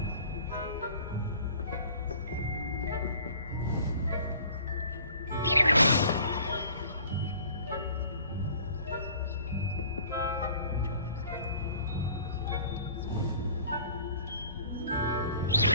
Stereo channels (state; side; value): inverted; both; correlation -0.50